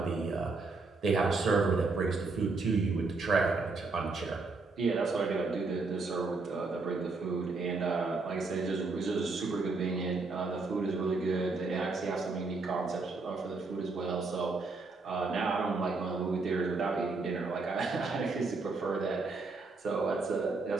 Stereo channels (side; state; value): left; quieter; 3.9 dB